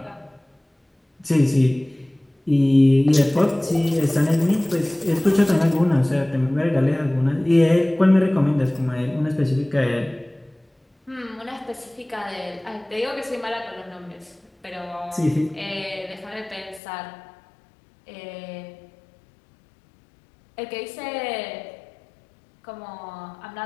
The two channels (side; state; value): right; drops out; at 16.8 s